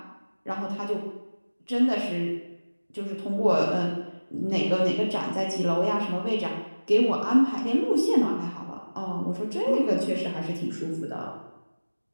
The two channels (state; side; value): inverted; both; correlation -1.00